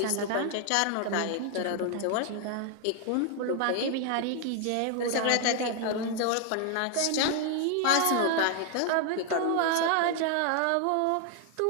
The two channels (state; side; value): different; both; correlation 0.00